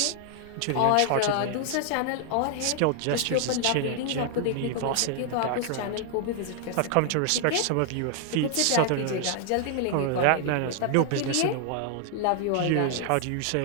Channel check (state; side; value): different; both; correlation 0.00